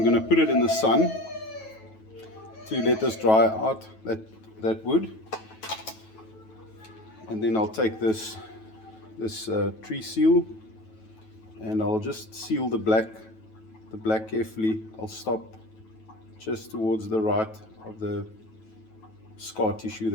going to put it in the sun to let this dry out, that wood, and then I'll take this tree seal, and I'll just seal the black carefully. I'll stop just towards the right of the scar tissue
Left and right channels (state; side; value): late; right; 9.2 ms